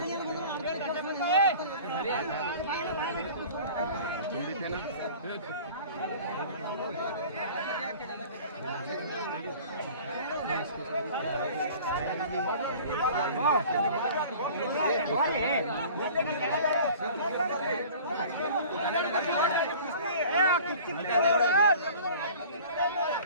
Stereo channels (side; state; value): both; inverted; correlation -0.44